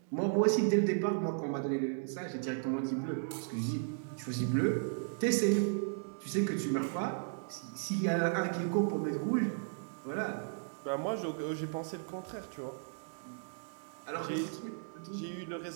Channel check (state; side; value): silent; left; digital silence